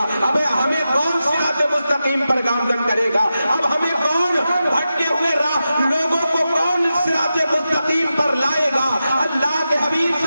اب ہمیں کون صراط مستقیم پر گامزن کرے گا؟ اب ہمیں کون بھٹکے ہوئے راہ لوگوں کو کون صراط مستقیم پر لائے گا؟ اللہ کے حبیب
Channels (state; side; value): inverted; both; correlation -0.91